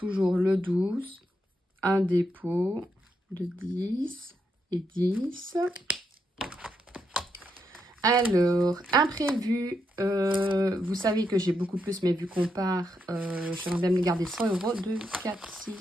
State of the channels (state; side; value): normal; both; correlation 0.81